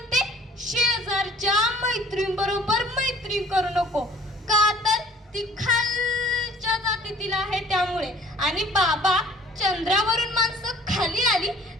शेजारच्या मैत्रीणबरोबर मैत्री करू नको, का तर ती खालच्या जातीतील आहे त्यामुळे. आणि बाबा, चंद्रावरून माणसं खाली आली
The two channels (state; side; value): normal; both; correlation 0.52